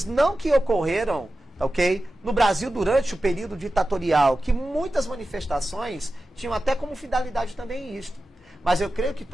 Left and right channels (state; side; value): normal; both; correlation 0.93